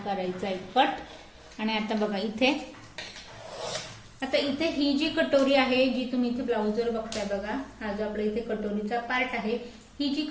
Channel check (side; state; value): both; identical; correlation 1.00